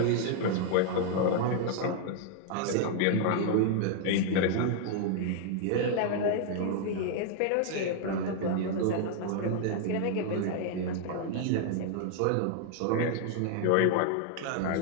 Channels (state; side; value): different; both; correlation 0.00